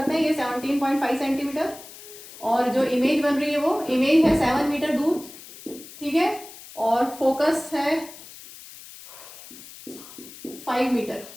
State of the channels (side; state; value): left; noise; hiss, 17 dB below the sound